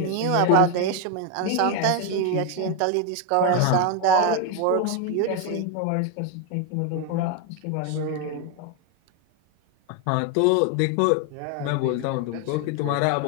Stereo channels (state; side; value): different; both; correlation 0.01